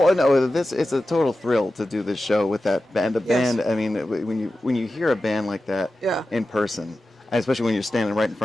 no, it's a total thrill to do this show with that band. The band, I mean, when you hear a band like that in person, especially when you're standing right in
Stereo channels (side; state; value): both; normal; correlation 0.93